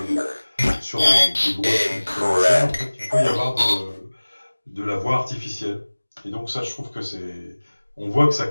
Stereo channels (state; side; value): inverted; both; correlation -1.00